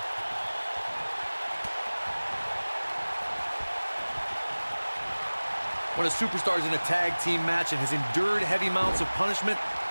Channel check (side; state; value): both; inverted; correlation -1.00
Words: When a superstar is in a tag team match and has endured heavy amounts of punishment,